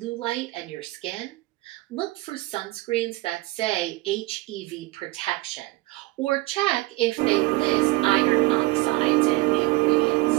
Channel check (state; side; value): quieter; left; 20.6 dB